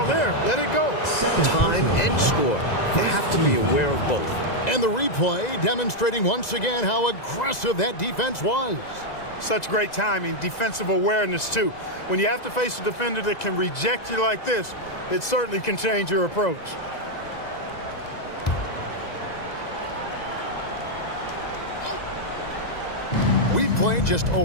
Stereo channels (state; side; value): late; right; 2.0 ms